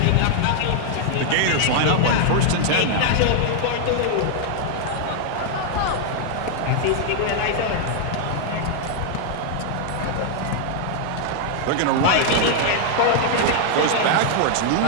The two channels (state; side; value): different; both; correlation 0.00